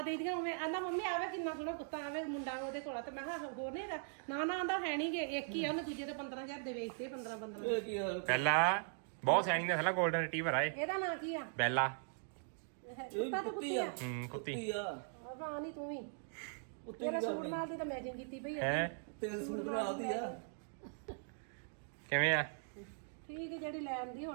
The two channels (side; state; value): left; silent; digital silence